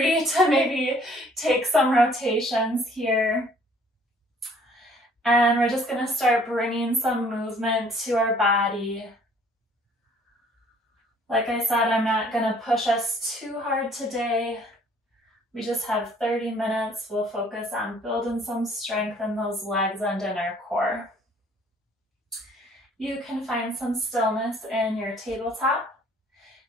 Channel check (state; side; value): normal; both; correlation 0.58